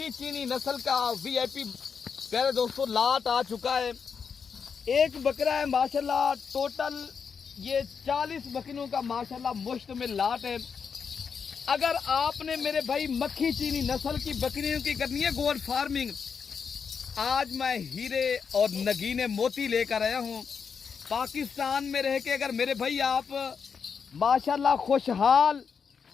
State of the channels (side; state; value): right; quieter; 6.2 dB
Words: चीनी नस्ल का VIP प्यारे दोस्तों लाट आ चुका है। एक बकरा है माशाल्लाह, टोटल ये 40 बकरियों का माशाल्लाह मुश्तमिल लाट है। अगर आपने मेरे भाई मक्खी चीनी नस्ल की बकरियों की करनी है गोट फार्मिंग, आज मैं हीरे और नगीने मोती लेकर आया हूँ। पाकिस्तान में रह के अगर मेरे भाई आप माशाल्लाह खुशहाल